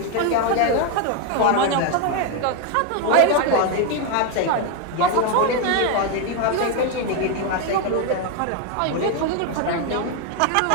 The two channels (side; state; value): both; different; correlation 0.01